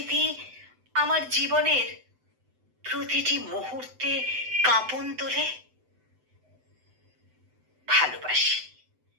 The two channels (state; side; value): late; left; 7.9 ms